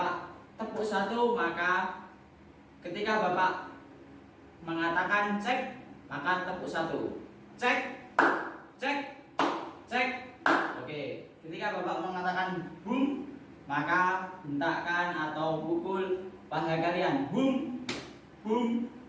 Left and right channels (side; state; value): both; identical; correlation 1.00